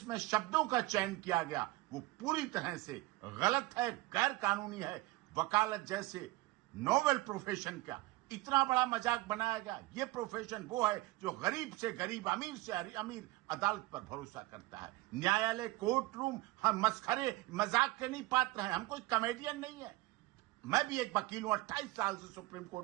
शब्दों का चयन किया गया, वो पूरी तरह से गलत है, गैर कानूनी है। वकालत जैसे नोबेल प्रोफेशन का इतना बड़ा मजाक बनाया गया। ये प्रोफेशन वो है जो गरीब से गरीब, अमीर से अमीर अदालत पर भरोसा करता है। न्यायालय, कोर्ट रूम हम मस्खरे मजाक के नहीं पात्र हैं। हम कोई कॉमेडियन नहीं है। मैं भी एक वकील हूं, 28 साल से सुप्रीम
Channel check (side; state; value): left; quieter; 20.0 dB